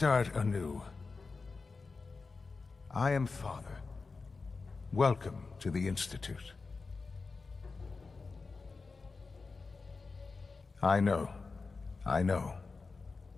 anew. I am Father. Welcome to the Institute. I know.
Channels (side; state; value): right; quieter; 4.2 dB